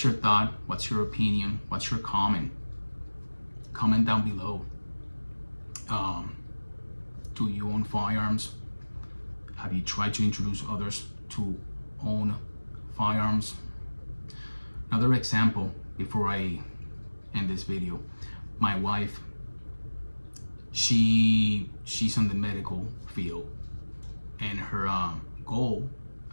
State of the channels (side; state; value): both; inverted; correlation -1.00